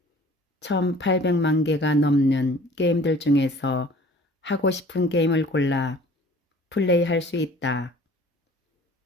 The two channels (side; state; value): both; normal; correlation 0.49